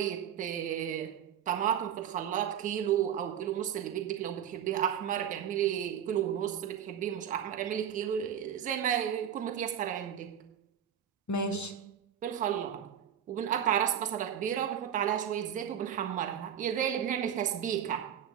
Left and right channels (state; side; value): quieter; left; 9.1 dB